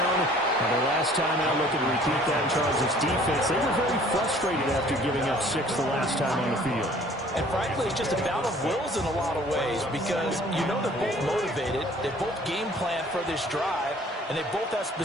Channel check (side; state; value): both; normal; correlation 0.54